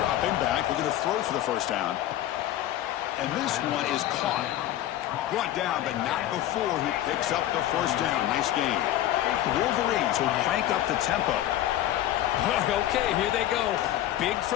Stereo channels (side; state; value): right; quieter; 13.2 dB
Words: back, looking to throw for the 1st down. And this one is caught. Brought down, but not before he picks up the 1st down. Nice game. The Wolverines will crank up the tempo. Okay, here they go. Big